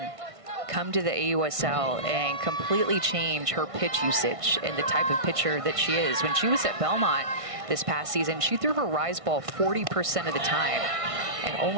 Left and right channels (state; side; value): late; left; 1.5 ms